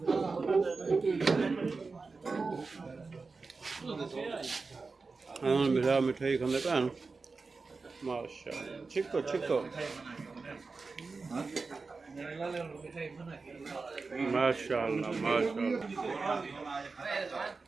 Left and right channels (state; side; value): quieter; left; 4.2 dB